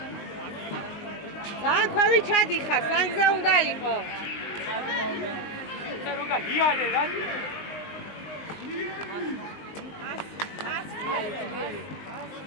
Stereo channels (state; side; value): late; right; 19 ms